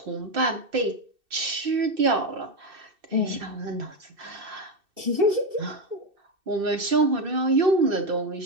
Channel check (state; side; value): late; left; 2.6 ms